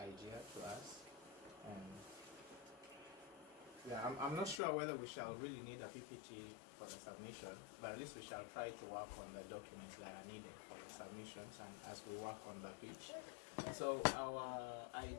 to us. And yeah, I'm not sure whether we shall really need a PPT for the submission, but at least we shall try to work on the documents that are needed for the submissions and as we work on the pitch. So our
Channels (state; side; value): drops out; right; at 4.6 s